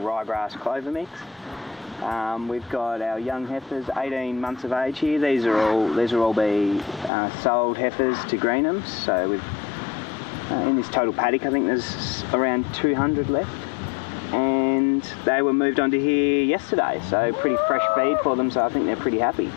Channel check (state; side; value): drops out; right; at 7.1 s